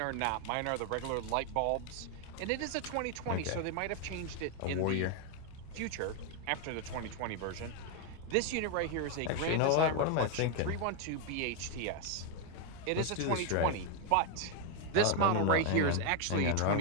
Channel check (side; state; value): both; different; correlation 0.01